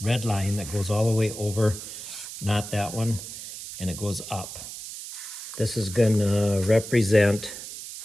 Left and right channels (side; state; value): right; noise; hiss, 10 dB below the sound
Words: red line that goes all the way over, not that one, and it goes up. This is going to represent